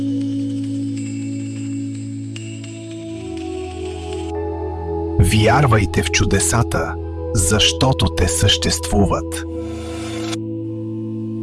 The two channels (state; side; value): identical; both; correlation 1.00